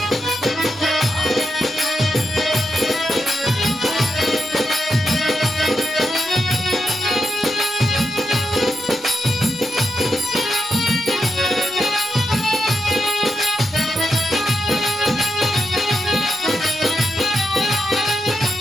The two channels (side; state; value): both; normal; correlation 0.85